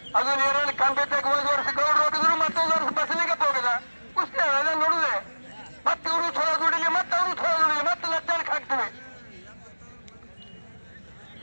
ಅದು ನೀರಲ್ಲಿ ಕಂಬಿದ್ದಾಗ 1 ವರ್ಷ ಗೌಡ್ರು ಹೋಗಿದ್ರು ಮತ್ತೊಂದು ವರ್ಷ ಬಸಲಿಂಗಪ್ಪ ಹೋಗಿದ ಕುಸ್ತಿ ಅದ ನೋಡುದೆ. ಮತ್ತೆ ಇವರು ಚಲೋ ದುಡಿಲಿ ಮತ್ತೆ ಅವರು ಚಲೋ ದುಡಿಲಿ ಮತ್ತೆ ಲಜ್ಜಾನಕ್ಕೆ ಹಾಕ್ತೀವಿ.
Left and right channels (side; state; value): both; inverted; correlation -1.00